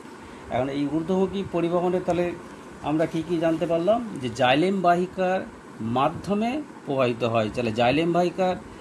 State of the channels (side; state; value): both; identical; correlation 1.00